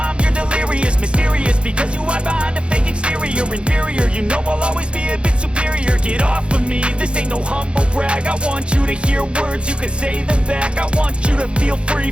you're delirious. Mysterious, because you hide behind a fake exterior. Inferior, you know I'll always be a bit superior. Get off of me, this ain't no humble brag. I want you to hear words, you can say them back. I want you to feel free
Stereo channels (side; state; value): left; late; 0.057 ms